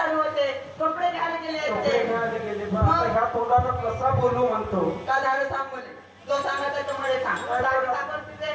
होते, कपडे घ्यायला गेले आहेत कपडे ते. घ्यायला गेले. मग आता ह्या तोंडानं कसा बोलू म्हणतो? का झालं सांग मला. जो सांगा त्याच्यामुळे सांग. दाढी कापून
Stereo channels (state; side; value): identical; both; correlation 1.00